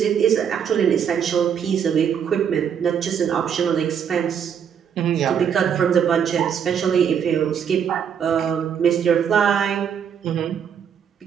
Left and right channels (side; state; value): left; quieter; 7.9 dB